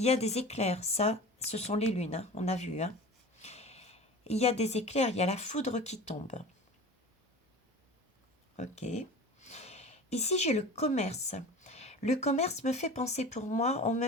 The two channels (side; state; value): both; normal; correlation 0.36